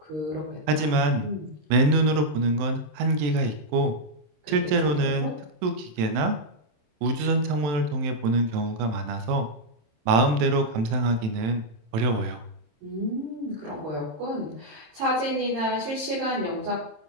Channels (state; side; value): late; left; 27 ms